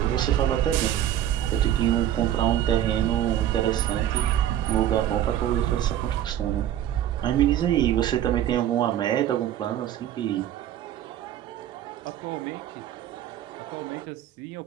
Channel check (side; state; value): left; quieter; 11.3 dB